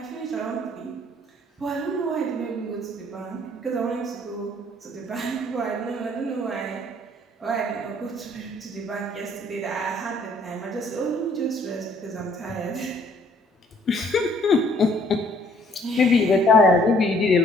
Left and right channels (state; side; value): normal; both; correlation 0.61